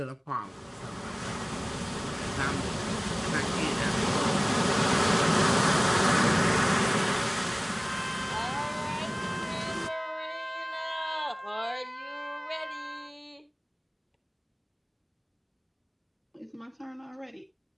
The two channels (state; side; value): identical; both; correlation 1.00